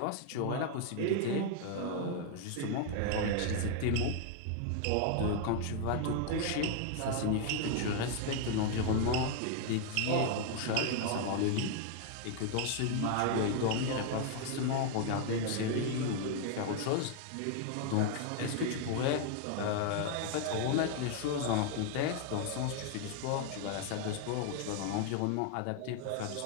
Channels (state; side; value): different; both; correlation 0.00